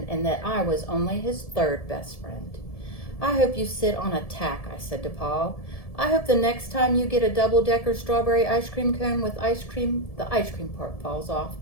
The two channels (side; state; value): right; late; 1.7 ms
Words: and that I was only his third best friend. I hope you sit on a tack, I said to Paul. I hope the next time you get a double-decker strawberry ice cream cone with ice cream, the ice cream part falls off